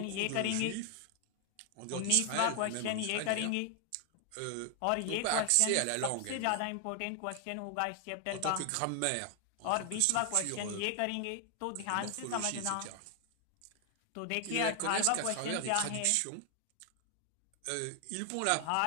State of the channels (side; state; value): both; different; correlation 0.00